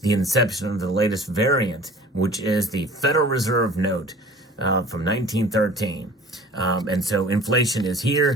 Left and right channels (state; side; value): normal; both; correlation 0.46